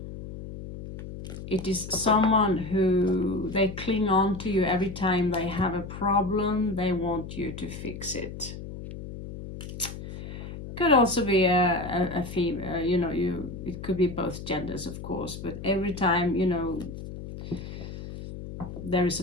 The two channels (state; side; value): noise; left; hum, 10 dB below the sound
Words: it is someone who they cling on to you every time they have a problem. They want you to fix it. Could also be a female, it could be both genders, of course, but every time, there is